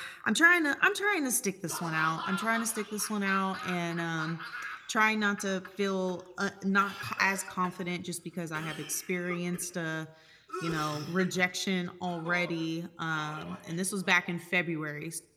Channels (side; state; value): both; identical; correlation 1.00